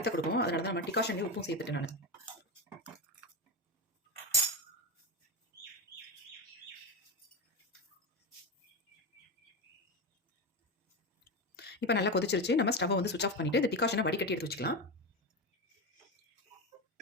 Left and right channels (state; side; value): normal; both; correlation 0.16